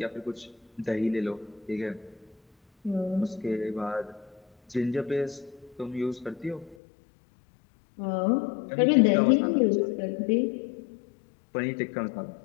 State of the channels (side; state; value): right; drops out; at 6.8 s